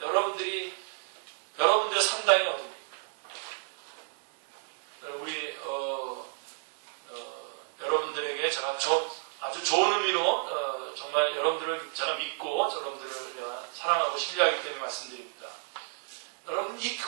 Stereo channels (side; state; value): left; silent; 57 dB below the other